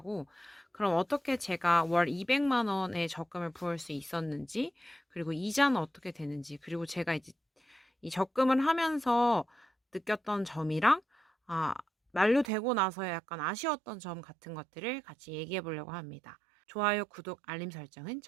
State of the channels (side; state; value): left; drops out; at 12.5 s